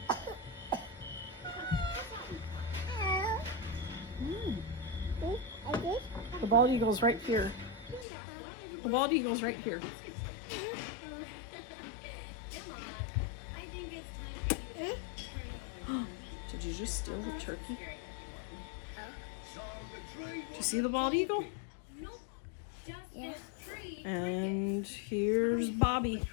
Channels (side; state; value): right; drops out; at 8.1 s